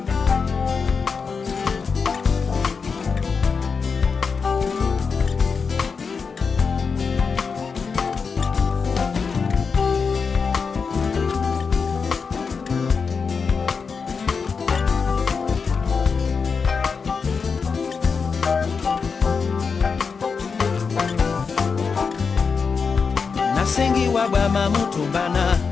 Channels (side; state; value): right; quieter; 5.4 dB